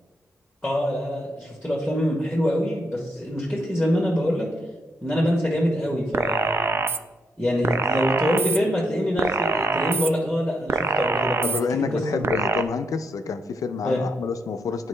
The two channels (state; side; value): normal; both; correlation 0.77